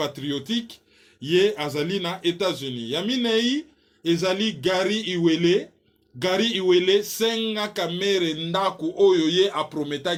Ye azali na États-Unis. Yami Nei ezali Gary Iwele. Gary Iwele senga kamere ndaku oyo ye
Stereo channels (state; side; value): identical; both; correlation 1.00